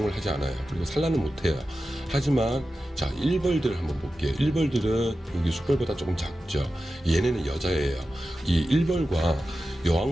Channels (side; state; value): both; normal; correlation 0.93